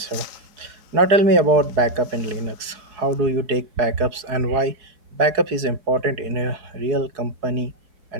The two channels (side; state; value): left; late; 4.7 ms